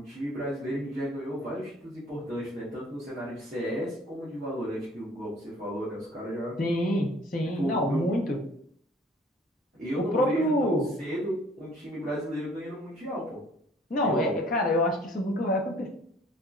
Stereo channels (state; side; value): normal; both; correlation 0.54